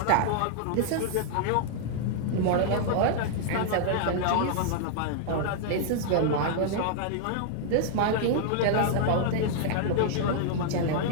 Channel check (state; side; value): different; both; correlation -0.01